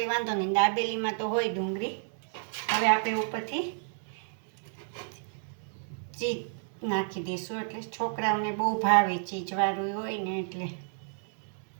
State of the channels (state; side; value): silent; left; 57 dB below the other